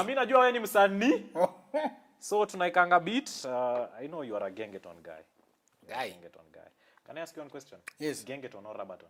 mimi najua wewe ni msanii. So tunaikanga beat. I know you are a gengeton guy. Gengeton guy. Can I ask you one question? Yes. Gengeton or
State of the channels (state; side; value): identical; both; correlation 1.00